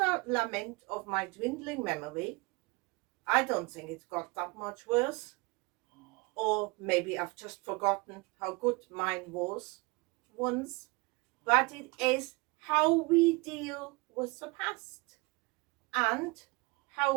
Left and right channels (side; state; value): left; quieter; 26.9 dB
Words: lament of my dwindling memory. I don't think it's got that much worse. Or maybe I've just forgotten how good mine was once. But it is how we deal with the past, and